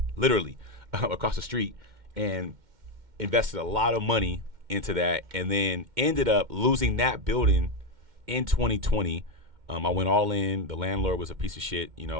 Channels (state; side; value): late; left; 2.1 ms